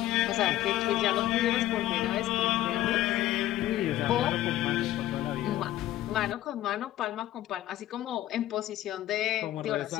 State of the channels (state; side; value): quieter; right; 13.9 dB